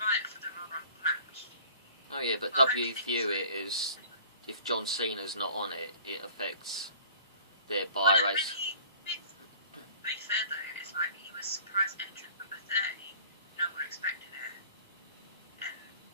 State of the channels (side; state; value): both; inverted; correlation -0.49